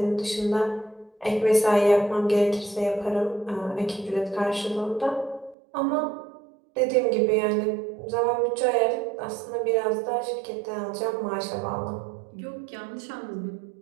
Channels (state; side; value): drops out; left; at 5.6 s